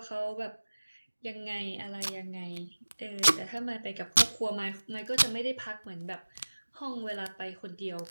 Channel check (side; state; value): both; inverted; correlation -1.00